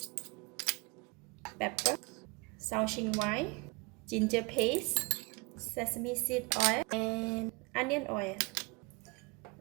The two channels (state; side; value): quieter; left; 27.4 dB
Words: pepper, Shaoxing white, ginger paste, sesame seed oil, and onion oil.